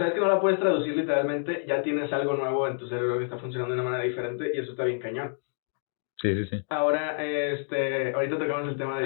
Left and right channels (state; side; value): silent; right; digital silence